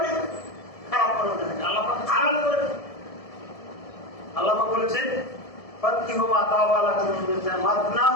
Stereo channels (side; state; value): right; late; 1.7 ms